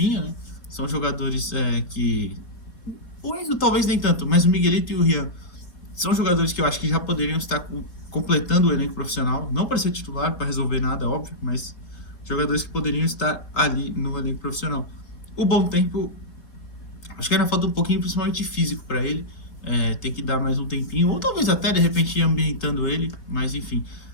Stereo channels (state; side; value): late; right; 3.8 ms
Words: né? São jogadores que... O Enzo talvez nem tanto, mas o Miguelito e o Rian são jogadores que eu acho que já poderiam estar completando o elenco profissional, não para ser titular, para resolver nada, óbvio, mas jogadores que poderiam estar ali no elenco profissional. O Bom Tempo, acho que ainda falta um pouquinho, principalmente físico, para ele. Tem que dar mais um tempinho, ou talvez até de repente ir ambientando ele, mas enfim.